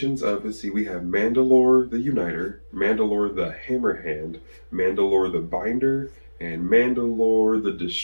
of, let's see, we have Mandalore the Uniter, Mandalore the Hammerhand, Mandalore the Binder, and Mandalore the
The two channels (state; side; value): inverted; both; correlation -1.00